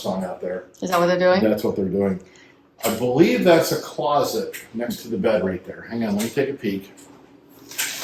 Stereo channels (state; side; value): identical; both; correlation 1.00